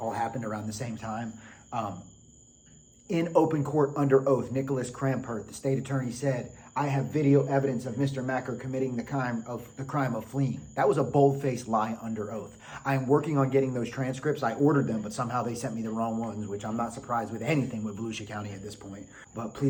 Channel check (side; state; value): both; identical; correlation 1.00